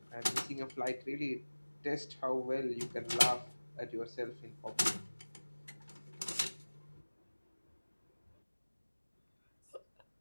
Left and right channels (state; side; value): inverted; both; correlation -1.00